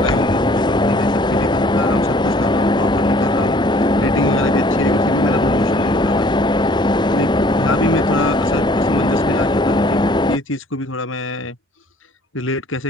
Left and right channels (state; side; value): normal; both; correlation 0.56